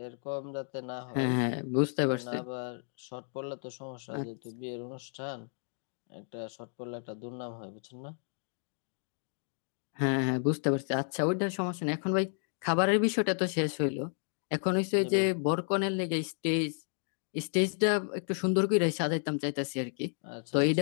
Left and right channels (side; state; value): right; silent; 56 dB below the other